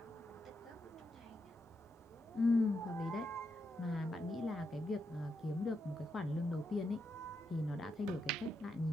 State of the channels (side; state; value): both; normal; correlation 0.83